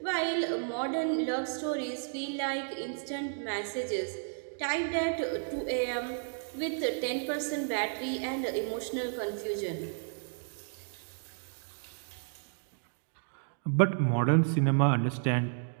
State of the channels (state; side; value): silent; left; digital silence